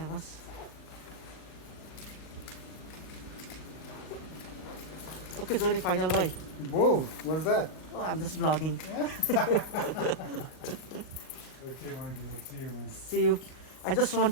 होस् Okay, Johnny, final bye. Whoa, what's that? Oh, I'm just vlogging. Okay, Mikey, we'll see you, man. See you. I just want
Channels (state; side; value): late; right; 38 ms